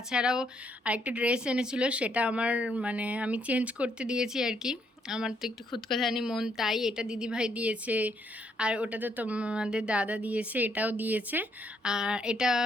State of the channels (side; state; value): both; normal; correlation 0.72